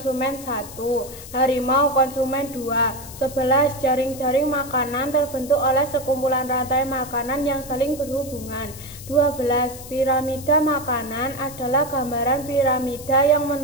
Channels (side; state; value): left; noise; hiss, 15 dB below the sound